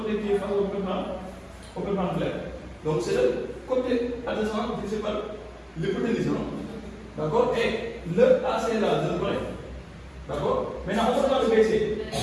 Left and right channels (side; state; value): both; identical; correlation 1.00